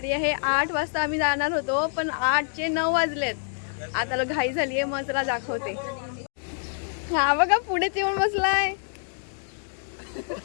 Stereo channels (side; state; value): right; silent; digital silence